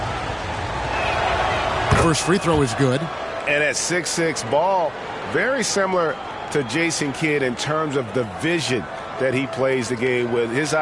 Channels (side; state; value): both; identical; correlation 1.00